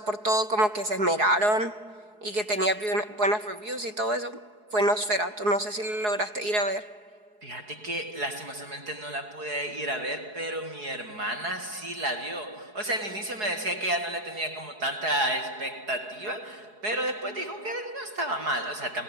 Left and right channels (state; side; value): late; left; 4.7 ms